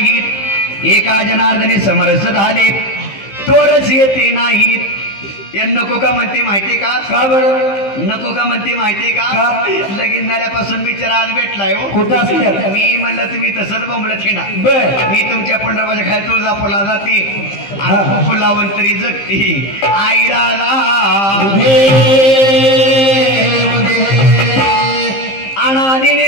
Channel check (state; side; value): late; right; 15 ms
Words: एका जनार्दनी समरस झाले, तोरस येते नाहीत. नको का म्हणते माहितीये का? का बरं नको का म्हणते माहितीये का? लगीन झाल्यापासून बिचारा आज भेटलाय हो. कुठं असते? मी म्हणलं तुम्ही तसंच बोंबलं थिंडा. मी तुमच्या पंढरपूरच्या खाली तुळजापूरला जाते आणि फुलावून तरी जगते. आई राजा अनादी